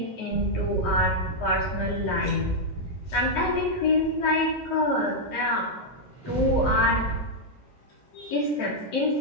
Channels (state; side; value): normal; both; correlation -0.03